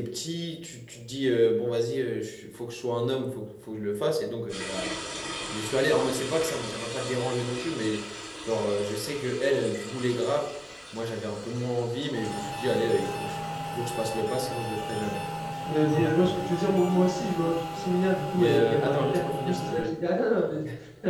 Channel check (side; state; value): both; identical; correlation 1.00